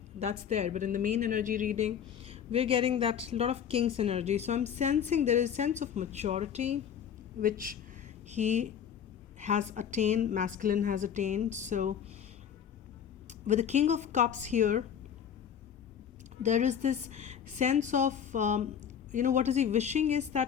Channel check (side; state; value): right; quieter; 8.4 dB